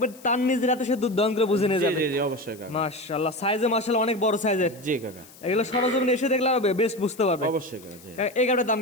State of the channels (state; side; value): noise; left; hiss, 22 dB below the sound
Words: তার নিজের হাতে সে দুধ দহন করে বুঝে নিয়ে জি যাবে। জি জি অবশ্যই কাকা। মাশাআল্লাহ, সাইজে মাশাআল্লাহ অনেক বড় সাইজের। জি কাকা, এগুলো সরজমিনে এসে দেখলে আরো বেস্ট বুঝতে পারবে। অবশ্যই কাকা। জি, কাকা, এই গাভীটার দাম